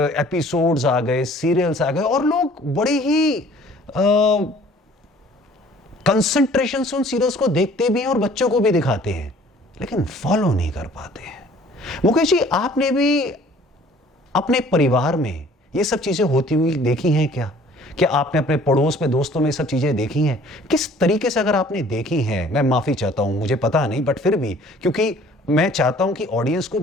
एपिसोड्स आ गए, सीरियल्स आ गए और लोग बड़े ही कंसंट्रेशन से उन सीरियल्स को देखते भी हैं और बच्चों को भी दिखाते हैं, लेकिन फॉलो नहीं कर पाते हैं। मुकेश जी, आपने भी अपने परिवार में ये सब चीजें होती हुई देखी हैं क्या? क्या आपने अपने पड़ोस में, दोस्तों में सब चीजें देखी हैं? किस तरीके से अगर आपने देखी हैं, मैं माफी चाहता हूं, मुझे पता नहीं, बट फिर भी, क्योंकि मैं चाहता हूं कि ऑडियंस को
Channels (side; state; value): both; normal; correlation 0.53